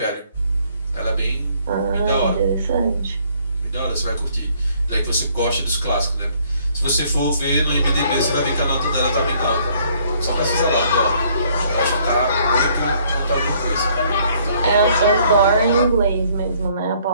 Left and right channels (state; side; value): inverted; both; correlation -0.63